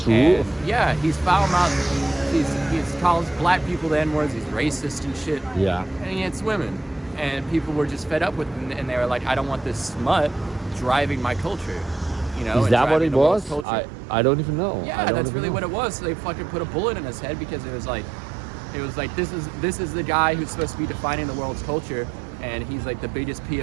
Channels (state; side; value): drops out; left; at 13.7 s